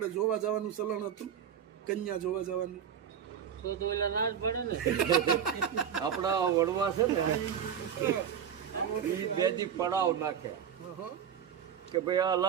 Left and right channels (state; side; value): quieter; left; 8.5 dB